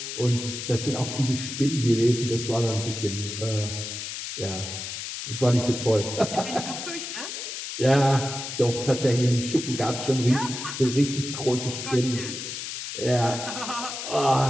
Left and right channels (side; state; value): left; noise; hiss, 7 dB below the sound